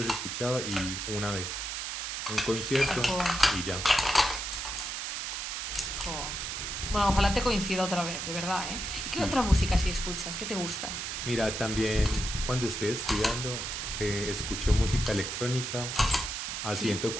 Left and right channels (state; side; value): noise; right; hiss, 4 dB below the sound